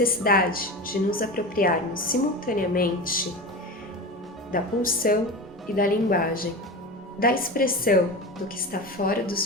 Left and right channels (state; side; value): normal; both; correlation 0.27